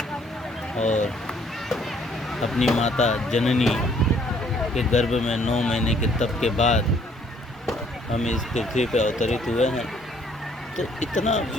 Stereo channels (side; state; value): both; normal; correlation 0.63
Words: और अपनी माता जननी के गर्भ में 9 महीने के तप के बाद हम इस पृथ्वी पर अवतरित हुए हैं। तो इतना